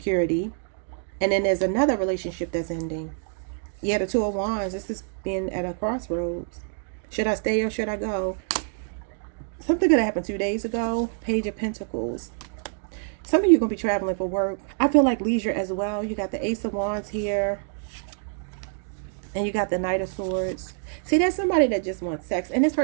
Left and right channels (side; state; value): left; silent; digital silence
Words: And then there's another relationship that's ending. Yeah, the Two of Wands. This is being at a crossroads. Should I stay or should I go? Something could have happened 2 days ago. Page of Pentacles. Some of you are going to be traveling for work. I feel like leisure as well. You got the Ace of Wands here. And you got the Knight of Swords. See, there's somebody that just wants sex. And this